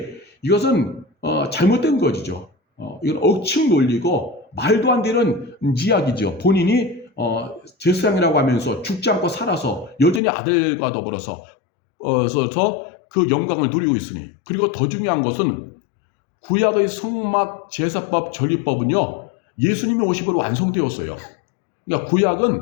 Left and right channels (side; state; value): right; drops out; at 10.2 s